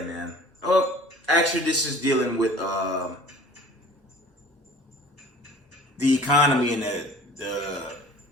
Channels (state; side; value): normal; both; correlation 0.47